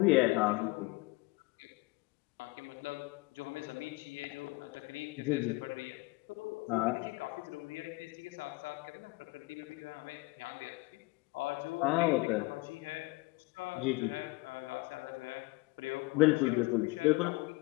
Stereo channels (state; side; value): quieter; right; 24.0 dB